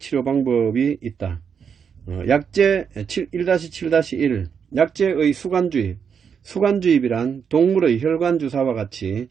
방법이 있다. 약재 1-7-1 약재의 수간주입 수간주입이란 동물의 혈관주사와 같이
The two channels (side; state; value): left; quieter; 7.0 dB